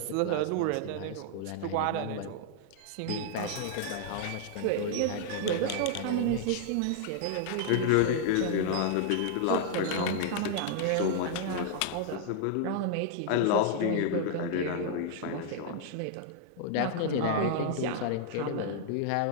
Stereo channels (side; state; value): both; different; correlation 0.00